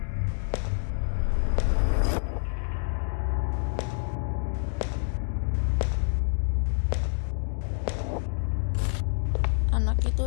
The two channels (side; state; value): right; silent; digital silence